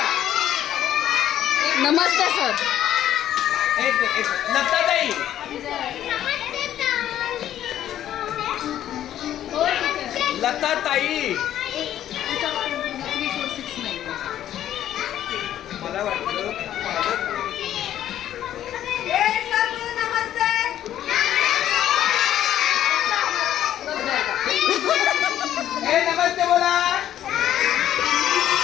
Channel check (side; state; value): right; quieter; 11.6 dB